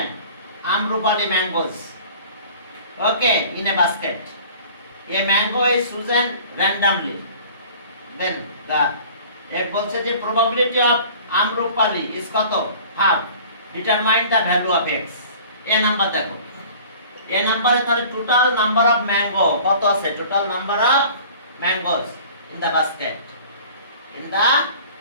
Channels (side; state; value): both; inverted; correlation -0.46